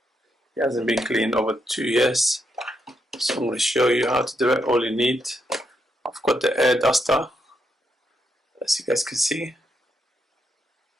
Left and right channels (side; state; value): both; normal; correlation 0.79